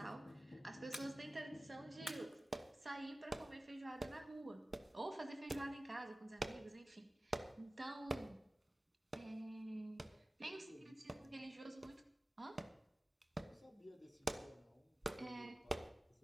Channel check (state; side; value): normal; both; correlation 0.97